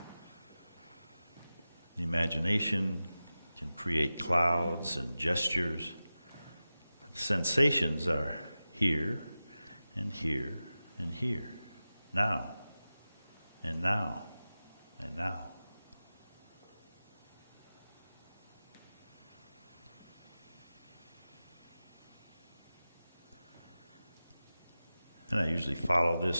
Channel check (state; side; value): inverted; both; correlation -0.95